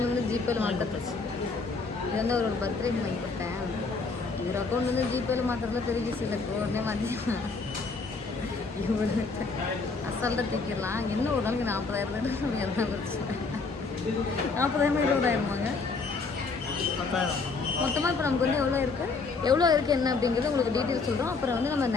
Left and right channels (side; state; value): right; quieter; 4.3 dB